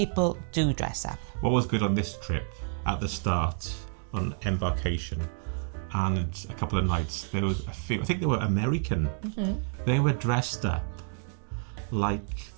do dress up. What was good on this trip, at the start, on embarkation, and a couple of nights, there was a few, I think they were American. They were dressed up like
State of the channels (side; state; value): left; silent; 58 dB below the other